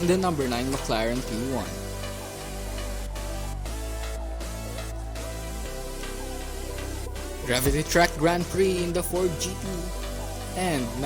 in the number 9 McLaren P1. Gravity Track Grand Prix in the Ford GT and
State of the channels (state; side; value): identical; both; correlation 1.00